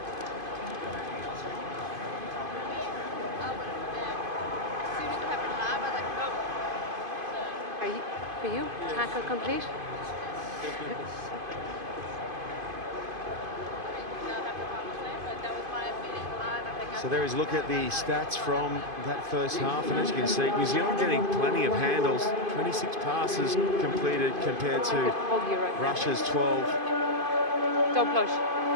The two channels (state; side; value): late; left; 2.5 ms